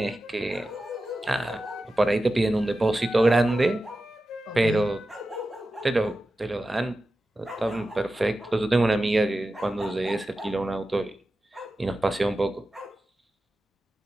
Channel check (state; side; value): normal; both; correlation 0.93